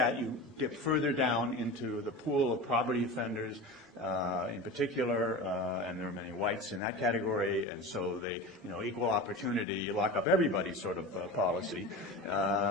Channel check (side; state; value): both; normal; correlation 0.30